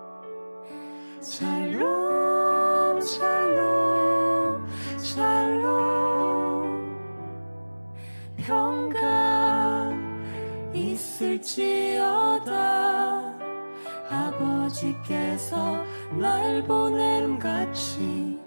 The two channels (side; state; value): both; inverted; correlation -1.00